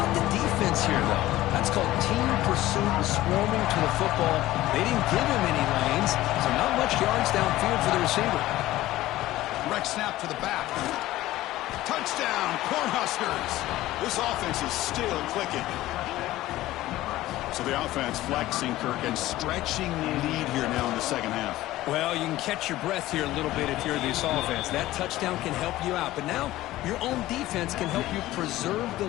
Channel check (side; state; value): right; quieter; 16.1 dB